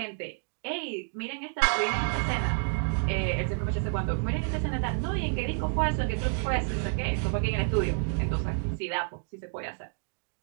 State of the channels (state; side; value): silent; left; 58 dB below the other